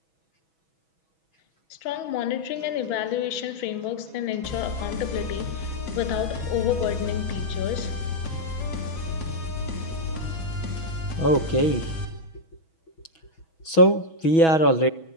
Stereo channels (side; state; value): right; late; 6.2 ms